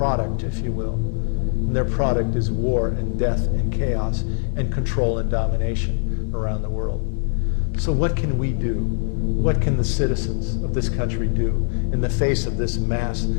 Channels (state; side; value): silent; right; 64 dB below the other